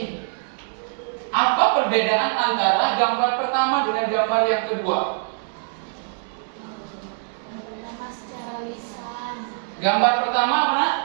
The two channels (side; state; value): left; silent; 63 dB below the other